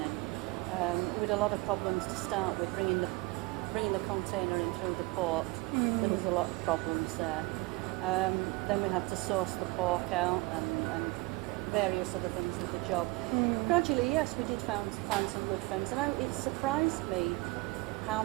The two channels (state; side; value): quieter; left; 23.2 dB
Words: We had a lot of problems to start with, bringing the container in through the port. There was a lot of problems there. Then we had to source the pork out and various other things with the job. Gradually, yes, we did find some good friends, and it surprised me how